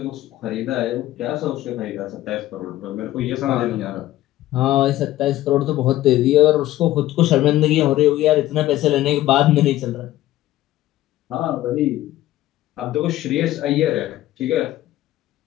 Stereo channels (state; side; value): quieter; right; 14.9 dB